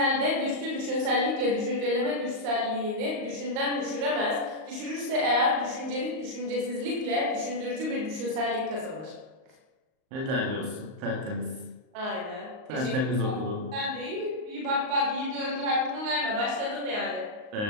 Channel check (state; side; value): late; left; 38 ms